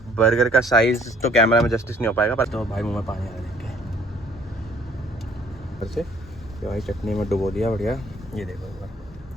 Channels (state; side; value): normal; both; correlation 0.59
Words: बर्गर का साइज तो कैमरा में जस्टिस नहीं हो पाएगा, पर तो भाई मुंह में पानी आ रहा है देख के। ये भाई चटनी में डुबो दिया बढ़िया, ये देखो एक बार।